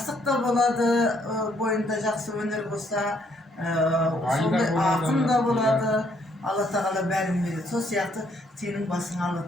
da boladı, boyunda jakсы öneri bolsa, sonday akın da boladı. Allah Teala bärin berdi. Sol siyaktı senin basına Allah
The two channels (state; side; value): normal; both; correlation 0.69